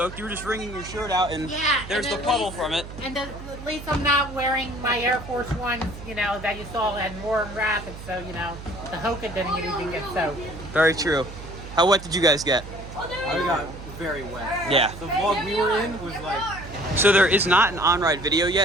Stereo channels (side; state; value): right; noise; hum, 13 dB below the sound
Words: You were just wringing your shirt out and there's the puddle from it. And at least I'm not wearing my Air Force Ones, you know, that you saw had more rapid, so, you know, the Hoka didn't even get soaked. Very true. How wet did you guys get? I got very wet. Yeah. The vlog we were in was like... So there is not an on-ride video